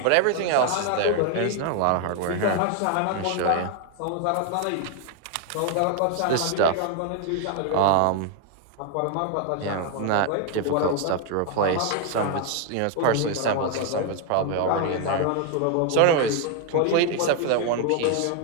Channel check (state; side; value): different; both; correlation 0.01